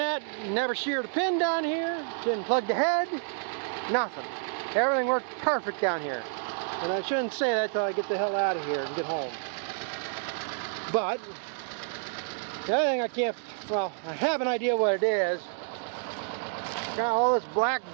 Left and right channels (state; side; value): silent; left; digital silence